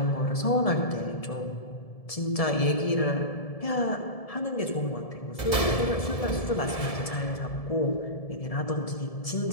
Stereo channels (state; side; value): late; right; 1.7 ms